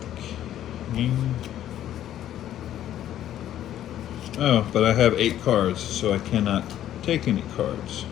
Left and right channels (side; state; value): right; quieter; 11.8 dB